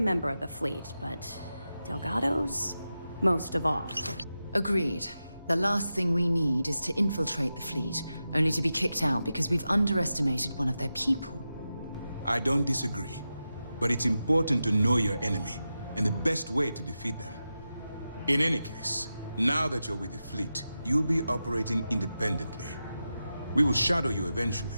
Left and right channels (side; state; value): both; inverted; correlation -0.91